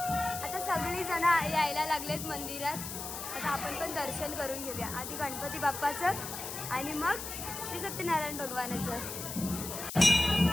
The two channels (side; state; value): left; noise; hiss, 7 dB below the sound